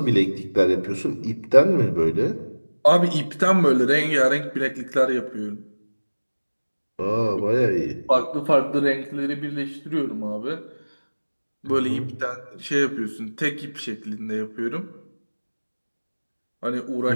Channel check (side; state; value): both; inverted; correlation -1.00